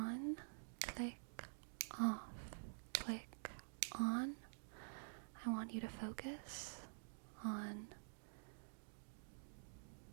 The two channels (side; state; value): left; silent; digital silence